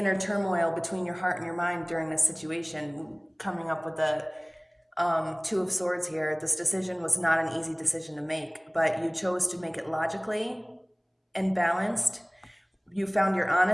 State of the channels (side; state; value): both; identical; correlation 1.00